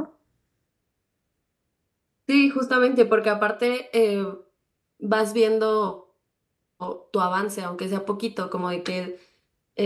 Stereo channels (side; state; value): both; identical; correlation 1.00